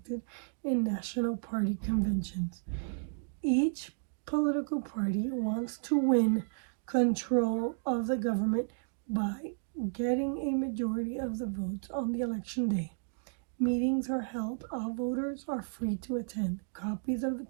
in national party conventions. Each political party wants to win control of the government by getting a majority of the votes on the election day. Meetings are held. All voters are free to attend. Copies of the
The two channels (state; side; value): silent; left; digital silence